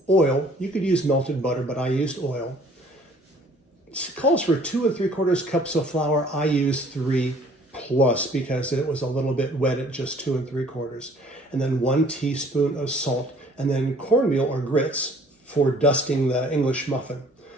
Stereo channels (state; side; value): normal; both; correlation 0.56